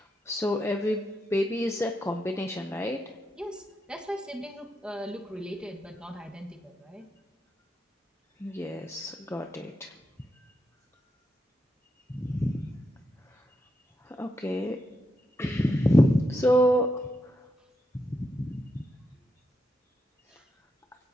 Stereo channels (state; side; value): normal; both; correlation 0.84